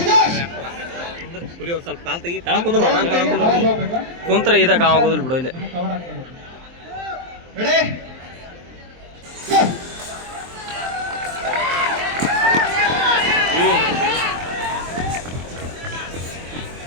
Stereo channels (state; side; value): late; left; 23 ms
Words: ಸ್ವಲ್ಪ ಕಾಲ್ ತೆಗಿ ಕುಂತ್ರ ಇದಾಗ ಆಗೋದಿಲ್ಲ ಬಿಡು. ಇಲ್ಲಿ ರೆಡಿ,